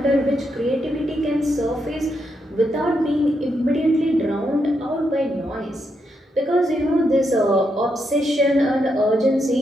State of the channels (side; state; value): both; normal; correlation 0.81